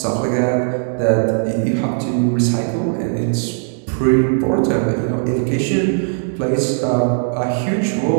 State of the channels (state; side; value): silent; left; digital silence